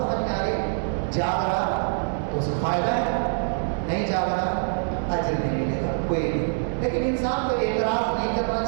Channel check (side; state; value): left; silent; digital silence